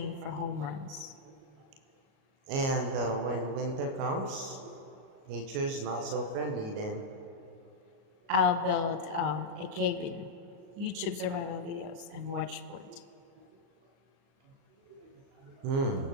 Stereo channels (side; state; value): left; late; 37 ms